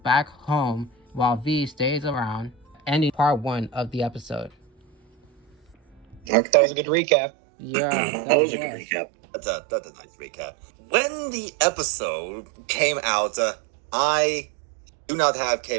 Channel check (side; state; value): left; drops out; at 6.3 s